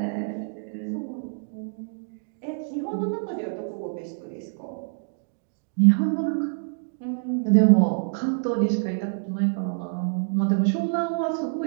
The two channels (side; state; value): left; silent; digital silence